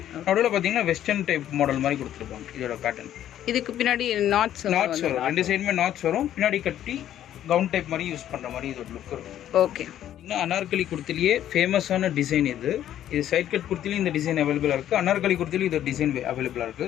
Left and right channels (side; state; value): right; quieter; 11.5 dB